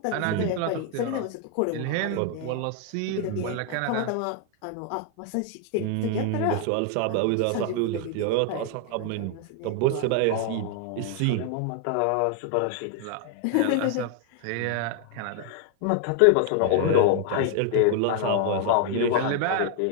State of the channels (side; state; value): both; different; correlation 0.00